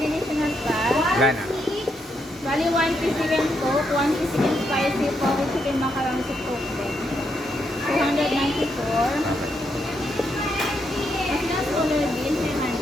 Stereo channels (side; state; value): both; normal; correlation 0.79